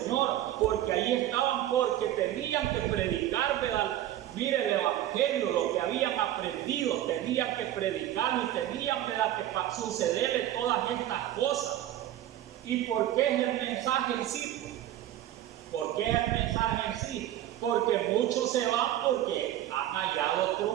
porque ahí estaban, porque tenían que predicar, ¿verdad?, mire, el evangelio, lo que habían aprendido, tenían que predicarlo y tenían, ¿verdad?, que sucederle todas estas cosas. ¿Y por qué es el mensaje en sí? ¿Por qué es el mensaje en sí? Porque muchos se van porque han hallado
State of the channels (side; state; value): left; quieter; 12.9 dB